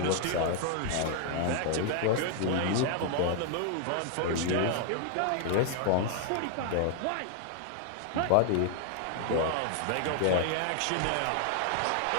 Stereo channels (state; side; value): different; both; correlation 0.00